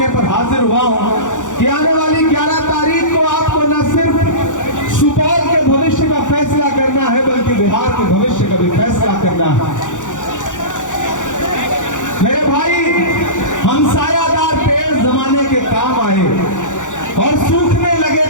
पर हाजिर हुआ हूं कि आने वाली 11 तारीख को आपको न सिर्फ सुपौल के भविष्य का फैसला करना है बल्कि बिहार के भविष्य का भी फैसला करना है। मेरे भाई, हम सायादार पेड़ जमाने के काम आए और सूखने लगे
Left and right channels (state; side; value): late; right; 0.86 ms